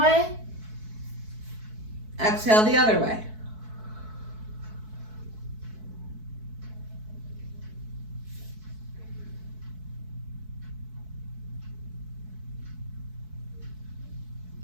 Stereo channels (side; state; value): left; late; 4.6 ms